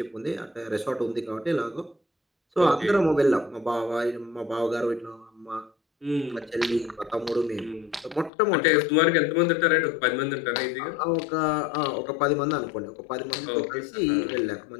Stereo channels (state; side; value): drops out; right; at 8.3 s